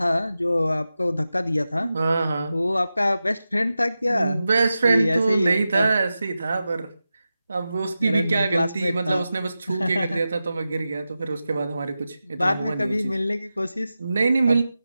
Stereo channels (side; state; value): both; inverted; correlation -0.93